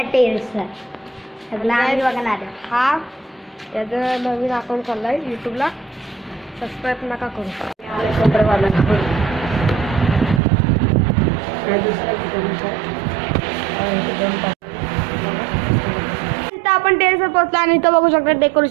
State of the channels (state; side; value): drops out; left; at 10.4 s